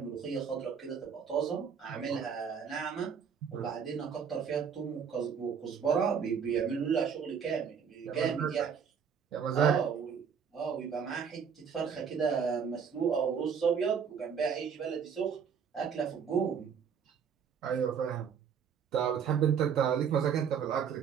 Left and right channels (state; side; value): quieter; left; 7.0 dB